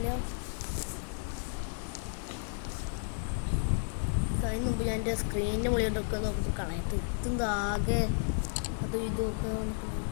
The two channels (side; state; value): right; silent; digital silence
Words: അതിന് മുമ്പ് ഞാൻ എൻ്റെ സ്ക്രീനിൻ്റെ മുകളിലോട്ടൊക്കെ നോക്കുമ്പോൾ കളയത്ത് ഇതാകെ അതും ഇതൊക്കെ